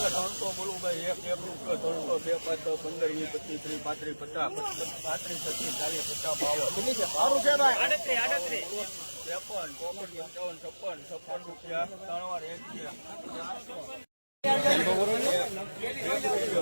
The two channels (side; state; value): both; inverted; correlation -1.00